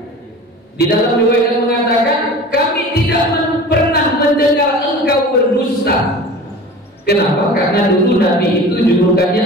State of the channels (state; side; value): normal; both; correlation 0.38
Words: Di dalam riwayat yang mengatakan, kami tidak pernah mendengar engkau berdusta. Kenapa? Karena dulu Nabi itu